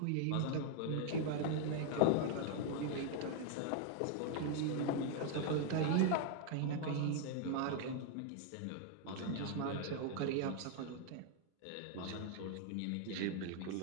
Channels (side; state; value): both; different; correlation 0.00